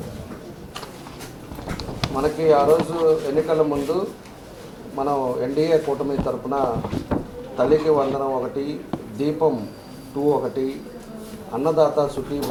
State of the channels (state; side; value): identical; both; correlation 1.00